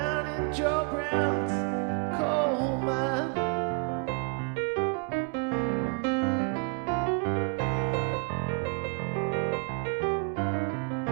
in Joe Brown's coal mine.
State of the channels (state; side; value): quieter; left; 35.2 dB